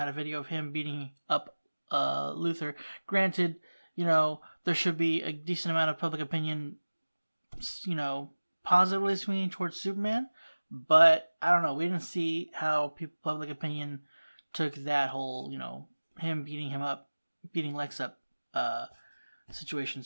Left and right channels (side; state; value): both; inverted; correlation -1.00